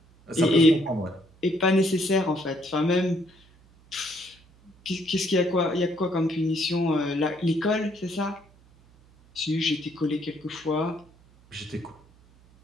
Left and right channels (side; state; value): right; noise; hum, 28 dB below the sound